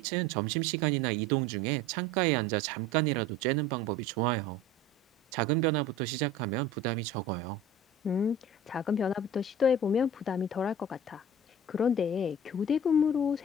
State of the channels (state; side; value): normal; both; correlation 0.40